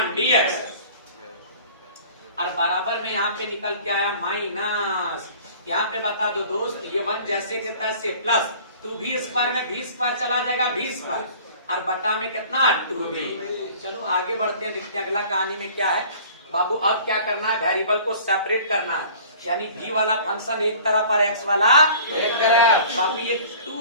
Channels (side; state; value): both; inverted; correlation -0.47